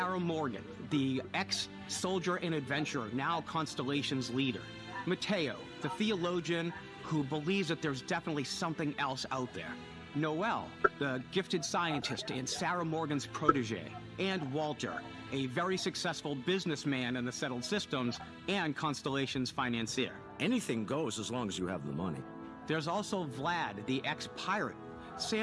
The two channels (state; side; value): identical; both; correlation 1.00